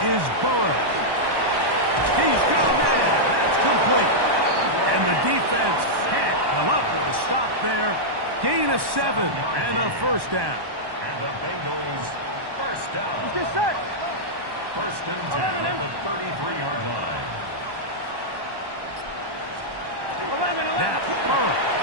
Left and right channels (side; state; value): left; late; 1.1 ms